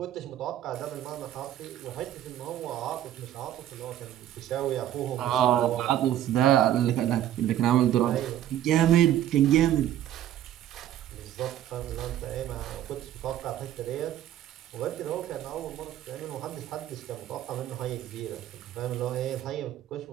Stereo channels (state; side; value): quieter; left; 12.0 dB